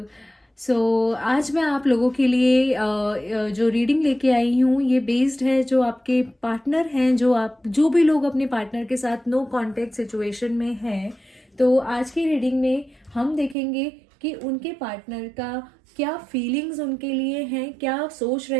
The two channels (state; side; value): drops out; left; at 13.6 s